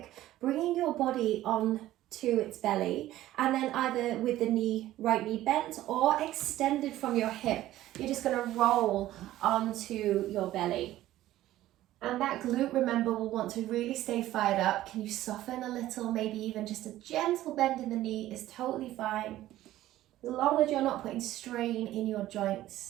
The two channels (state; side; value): quieter; left; 14.6 dB